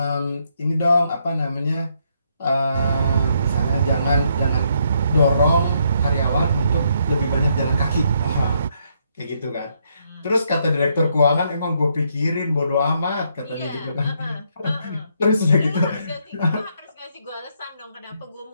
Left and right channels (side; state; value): both; inverted; correlation -0.73